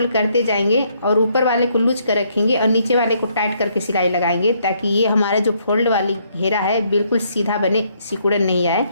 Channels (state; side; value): inverted; both; correlation -0.70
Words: करते जाएंगे और ऊपर वाले को लूज कर रखेंगे और नीचे वाले को टाइट करके सिलाई लगाएंगे, ताकि ये हमारा जो फोल्ड वाली घेरा है बिल्कुल सीधा बने, सिकुड़न नहीं आए।